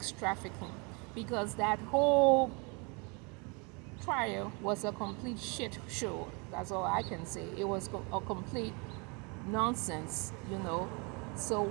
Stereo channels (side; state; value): left; quieter; 31.5 dB